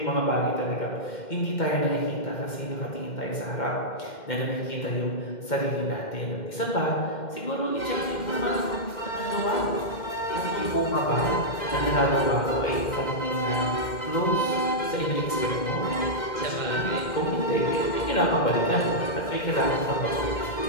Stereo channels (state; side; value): late; right; 2.1 ms